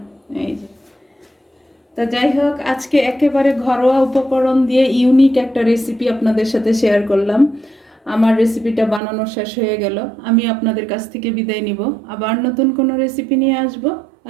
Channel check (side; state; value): left; drops out; at 9.0 s